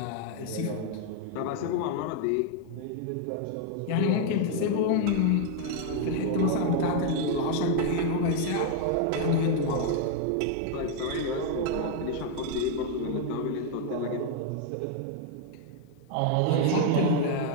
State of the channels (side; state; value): both; different; correlation 0.00